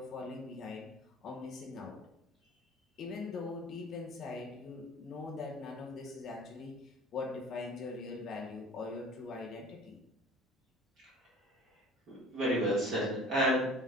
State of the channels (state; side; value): normal; both; correlation 0.44